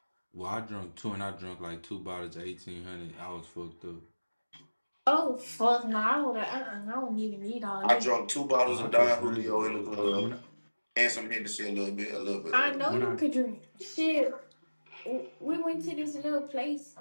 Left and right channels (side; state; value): both; inverted; correlation -1.00